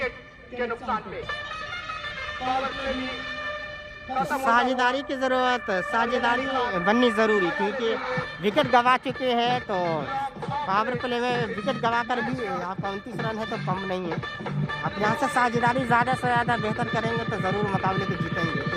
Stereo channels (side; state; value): both; identical; correlation 1.00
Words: के नुकसान पे। पावर प्ले भी साझेदारी की जरूरत, साझेदारी बननी जरूरी, क्योंकि विकेट गवा चुके हैं। तो पावर प्ले में विकेट गवा कर भी आपका 29 रन है तो कम नहीं है। आप यहाँ से साझेदारी ज़्यादा से ज़्यादा बेहतर करेंगे तो ज़रूर मुकाबले को जीतेंगे,